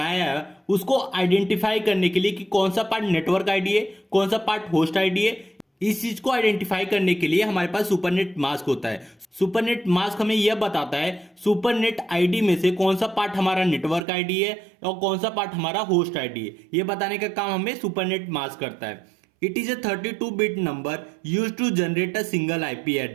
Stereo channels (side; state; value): left; drops out; at 14.1 s